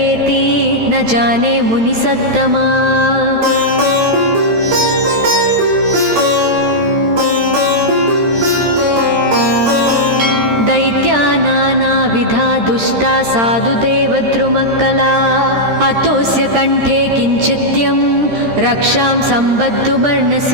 न जाने मुनिसत्तमा दैत्यानानाविधा दुष्टा साधुदेवद्रुमक्कला अतोऽस्य कण्ठे किञ्चित्यं रक्षां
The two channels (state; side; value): late; left; 13 ms